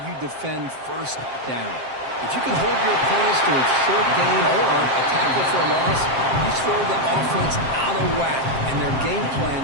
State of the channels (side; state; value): left; late; 7.6 ms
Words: you defend 1st down. If you can hold your opponents to a short gain or a tackle for a loss, you throw the offense out of whack, and their game plan